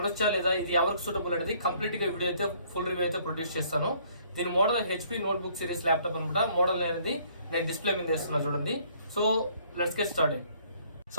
లేదా, ఇది ఎవరికి సూటబుల్ అనేది కంప్లీట్ గా వీడియో అయితే ఫుల్ రివ్యూ అయితే ప్రొడ్యూస్ చేస్తాను. దీని model HP notebook series laptop అనమాట. మోడల్ అనేది నేను డిస్ప్లే మీద వేస్తున్నా చూడండి. So let's get started.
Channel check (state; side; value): inverted; both; correlation -0.62